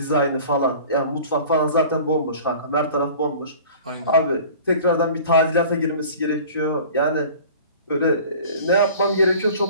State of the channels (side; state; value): both; inverted; correlation -0.44